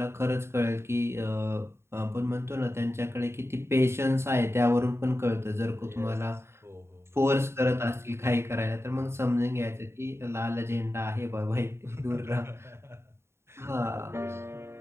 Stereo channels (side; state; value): left; late; 0.12 ms